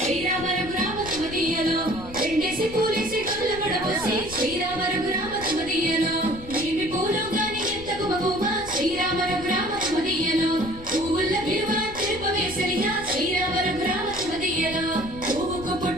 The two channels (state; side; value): noise; left; rumble, 15 dB below the sound